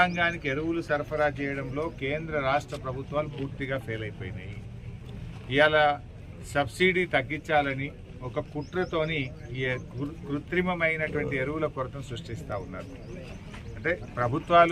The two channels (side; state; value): both; identical; correlation 1.00